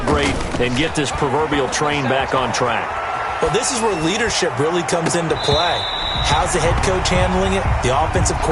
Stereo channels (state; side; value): identical; both; correlation 1.00